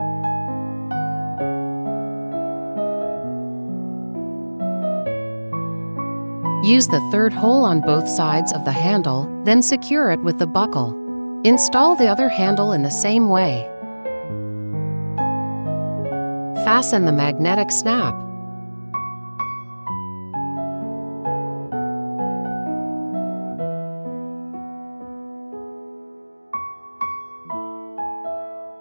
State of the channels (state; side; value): inverted; both; correlation -1.00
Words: Use the third hole on both sides of the handle, then secure it with the buckle. Install the other handle in the same way. fasten the magnetic snap.